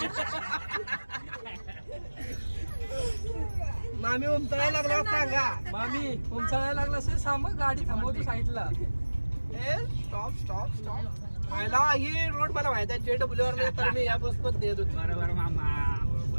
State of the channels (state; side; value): inverted; both; correlation -1.00